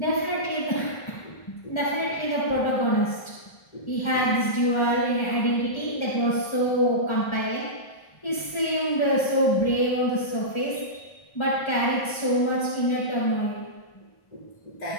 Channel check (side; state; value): right; late; 1.3 ms